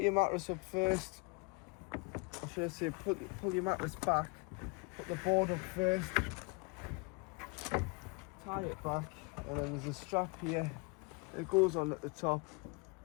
your mattress up first, or should I say pull your mattress back, put the board up first, tie it back, and then there's a strap here. It goes on at the top,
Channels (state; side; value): quieter; right; 29.2 dB